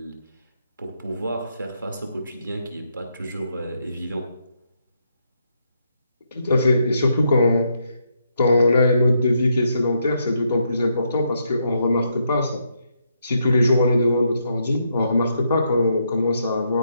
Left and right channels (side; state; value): both; inverted; correlation -0.78